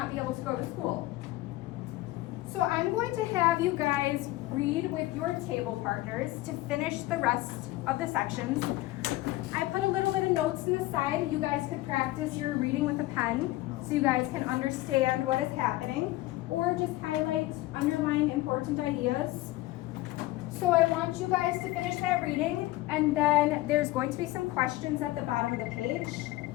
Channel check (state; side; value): quieter; right; 17.9 dB